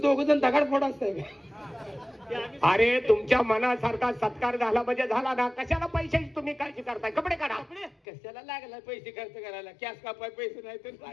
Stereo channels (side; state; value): right; drops out; at 8.0 s